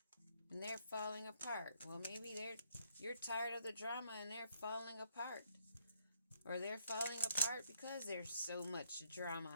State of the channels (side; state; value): both; inverted; correlation -0.72